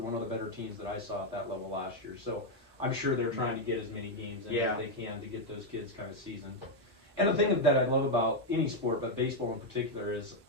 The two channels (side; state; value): both; normal; correlation 0.02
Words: of the better teams that I saw at that level last year. So I'm sure they're trying to get as many games in as they can to get those kids kind of seasoned. And the thing that I love about any sport, but baseball in particular, is